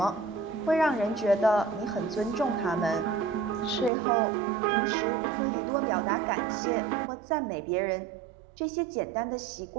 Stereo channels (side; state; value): left; drops out; at 3.9 s